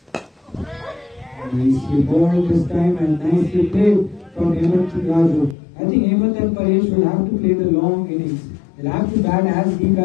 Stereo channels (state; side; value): drops out; right; at 5.6 s